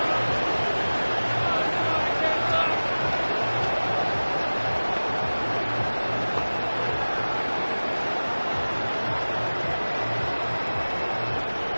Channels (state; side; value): inverted; both; correlation -1.00